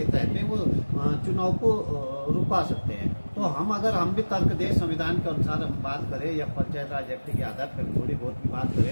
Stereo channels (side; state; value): both; inverted; correlation -1.00